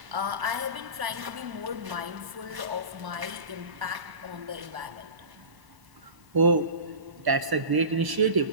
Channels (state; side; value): late; left; 1.0 ms